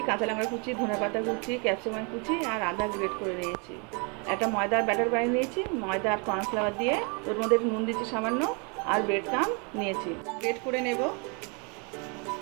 কাঁচা লঙ্কা কুচি, ধনেপাতা কুচি, ক্যাপসিকাম কুচি আর আদা গ্রেট করে নিয়েছি। একটা ময়দার ব্যাটার বানিয়ে নিয়েছি, ময়দা আর কর্নফ্লাওয়ার দিয়ে। ওর মধ্যে নুন দিচ্ছি সামান্য, আর ব্রেড ক্রাম্ব নিয়েছি, গ্রেট করে নেব।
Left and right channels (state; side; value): quieter; left; 33.9 dB